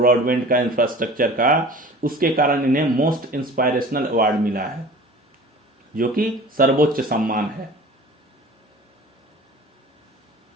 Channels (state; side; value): normal; both; correlation 0.42